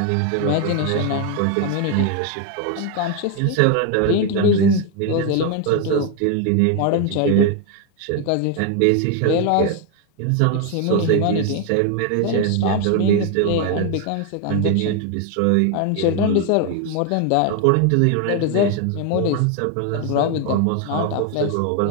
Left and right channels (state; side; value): different; both; correlation 0.01